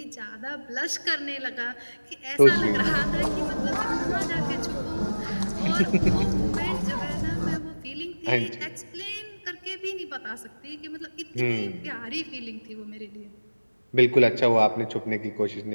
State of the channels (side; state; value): both; inverted; correlation -1.00